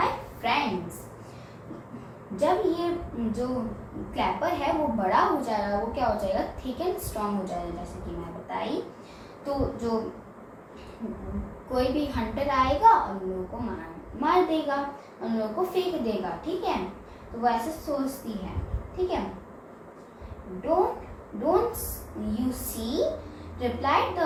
फ्रेंड्स। जब ये जो क्लैपर है वो बड़ा हो जाएगा, वो क्या हो जाएगा, थिक एंड स्ट्रॉन्ग हो जाएगा, जैसे कि मैं बताई। तो जो कोई भी हंटर आएगा और उन लोगों को मार देगा, उन लोगों को फेंक देगा, ठीक है। तो वो ऐसे सोचती है, ठीक है। Don't you see, replied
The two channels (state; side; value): identical; both; correlation 1.00